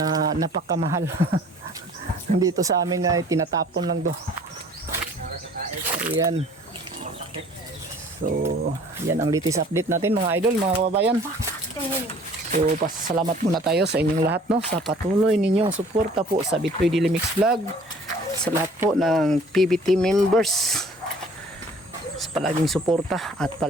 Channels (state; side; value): normal; both; correlation 0.52